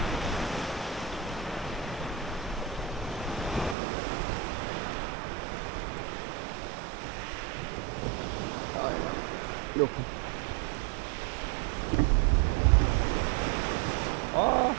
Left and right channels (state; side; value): drops out; left; at 3.8 s